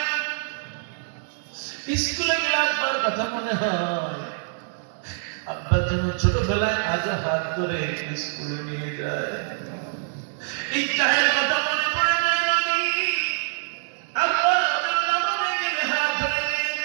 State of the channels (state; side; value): silent; left; digital silence